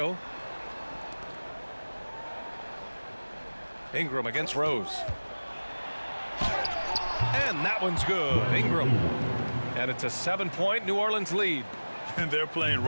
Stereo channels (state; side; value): inverted; both; correlation -1.00